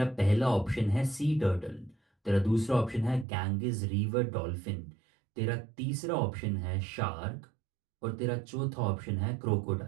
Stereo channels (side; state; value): left; drops out; at 3.2 s